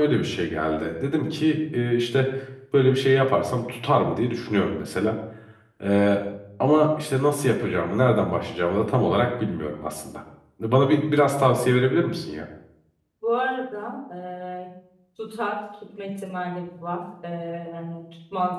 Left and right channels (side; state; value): both; identical; correlation 1.00